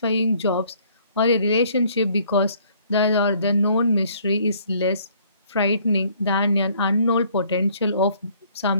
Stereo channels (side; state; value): both; inverted; correlation -0.61